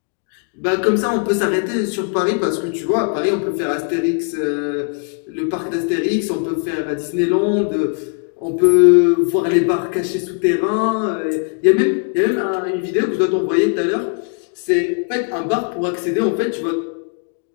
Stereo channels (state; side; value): quieter; right; 38.7 dB